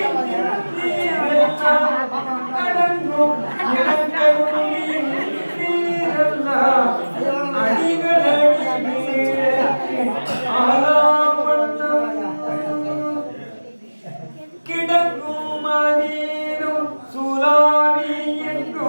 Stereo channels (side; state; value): both; inverted; correlation -1.00